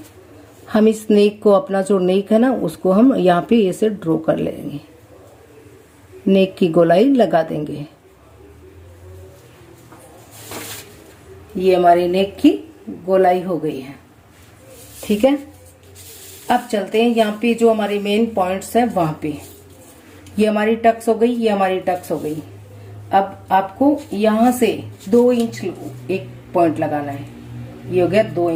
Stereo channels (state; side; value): identical; both; correlation 1.00